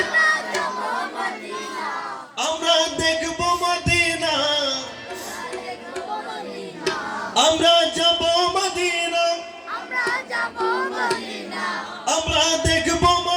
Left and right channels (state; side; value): identical; both; correlation 1.00